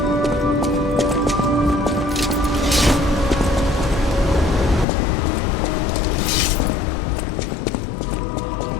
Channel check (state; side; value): drops out; right; at 4.9 s